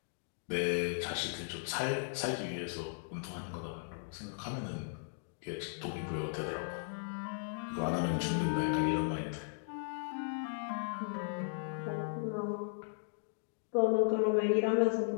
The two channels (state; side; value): silent; right; digital silence